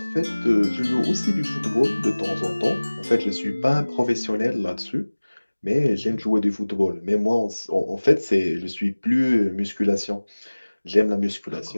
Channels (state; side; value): inverted; both; correlation -1.00